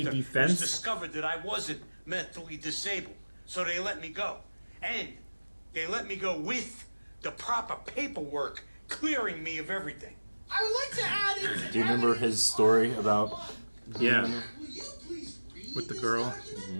was defense. discovered that I wasn't mentally disabled, so they let me go. And they let me go with the proper paperwork clearing me of everything. I would like to add into Do you remember evidence his story about? Yeah. Will you please read With the this girl?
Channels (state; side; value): inverted; both; correlation -1.00